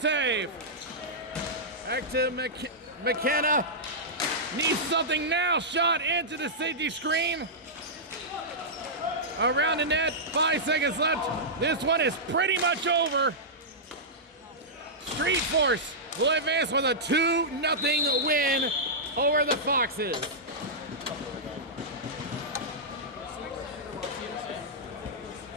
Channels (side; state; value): both; normal; correlation -0.12